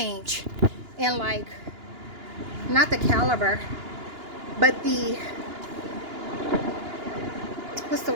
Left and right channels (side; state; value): left; late; 2.9 ms